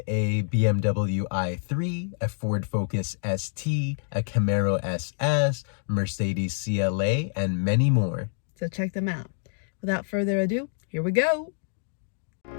a BMW i3, a Ford Focus ST, a Camaro SS, Mercedes CLA, and many more. So check them out. Without further ado, here we go.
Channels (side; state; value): right; silent; digital silence